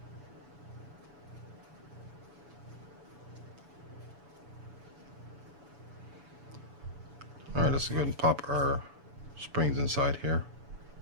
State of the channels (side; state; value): left; late; 6.9 ms